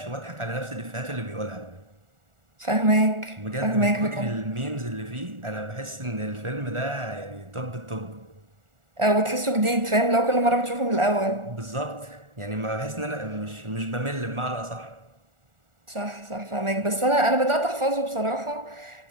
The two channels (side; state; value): left; late; 1.4 ms